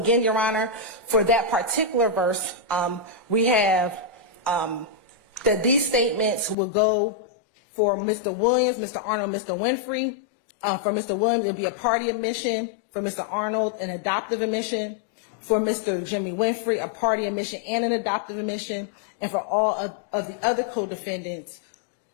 Your Honor, for that particular verse, we have that these statements will go for Mr. Williams, Mr. Arnold, Mr. Winfrey. For Mr. Williams, it'll be a party admission. For Mr. Arnold, an adoptive admission. For Mr. Jimmy Winfrey, a party admission and an adoptive admission. And for all of the other co-defendants,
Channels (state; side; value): drops out; right; at 6.6 s